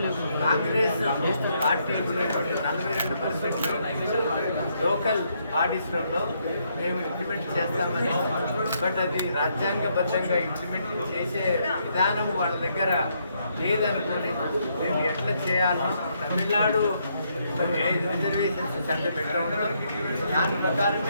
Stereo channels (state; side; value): inverted; both; correlation -0.75